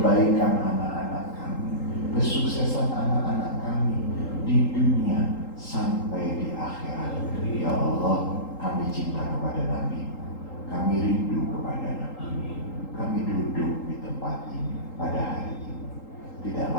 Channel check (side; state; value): right; late; 3.8 ms